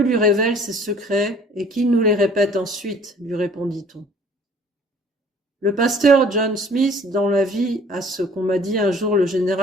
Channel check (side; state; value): both; normal; correlation 0.53